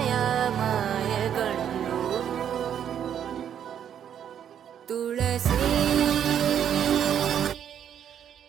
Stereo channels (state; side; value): quieter; left; 9.2 dB